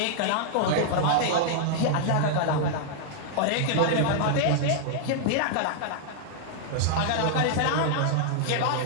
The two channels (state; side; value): different; both; correlation -0.01